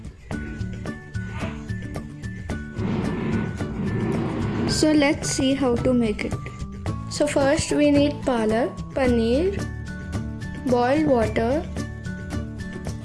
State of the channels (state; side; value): identical; both; correlation 1.00